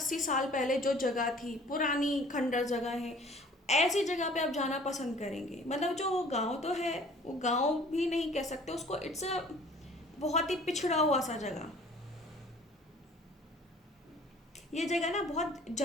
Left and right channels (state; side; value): normal; both; correlation 0.51